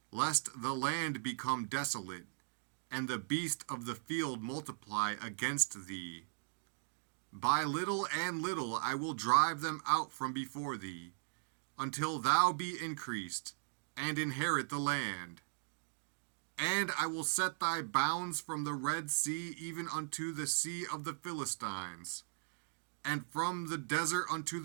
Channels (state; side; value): silent; left; digital silence